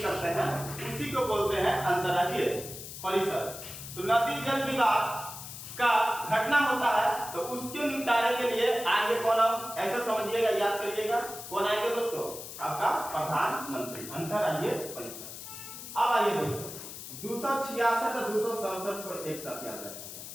करते हैं, उसी को बोलते हैं अंतरराज्यीय परिषद। तो नदी जल विवाद का घटना होता है तो उसके निपटारे के लिए आएंगे कौन, हम ऐसे समझिएगा, याद करिएगा, कौन आएंगे दोस्तों, आपका प्रधानमंत्री, अंतरराज्यीय परिषद। अब आइए दोस्तों 266 और 267 को एक साथ याद रखेंगे।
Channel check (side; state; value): left; noise; hiss, 11 dB below the sound